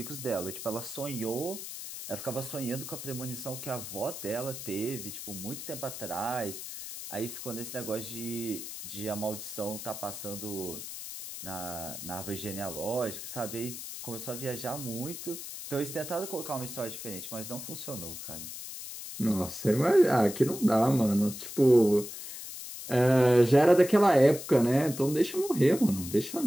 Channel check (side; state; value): left; noise; hiss, 9 dB below the sound